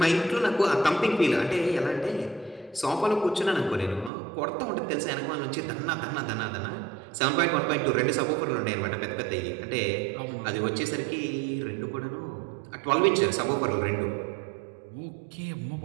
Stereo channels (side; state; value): left; drops out; at 4.1 s